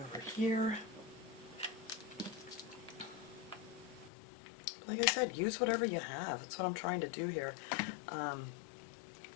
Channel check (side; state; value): right; drops out; at 4.1 s